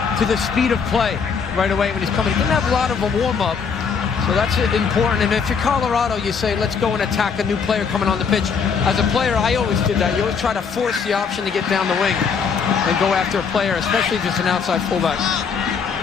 to the speed of play right away when he's coming? He didn't have a lot of a warm-up, so that's important. And if you're Colorado, you say, let's go and attack a new player coming on the pitch. As a player, I always did that. You always try to force the option to get down the wing and go after a player, especially if it's an outside fullback.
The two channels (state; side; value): quieter; right; 6.1 dB